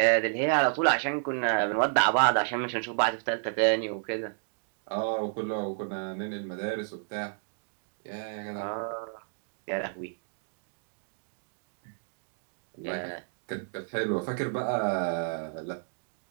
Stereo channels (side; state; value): left; silent; digital silence